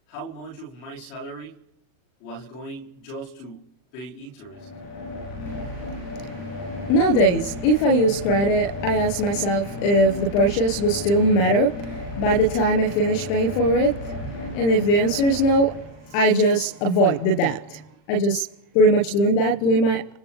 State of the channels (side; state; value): right; late; 40 ms